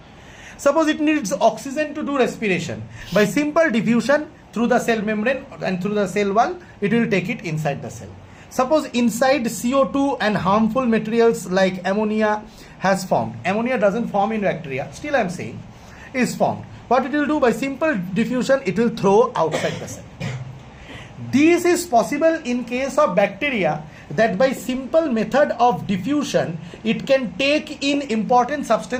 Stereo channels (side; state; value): both; identical; correlation 1.00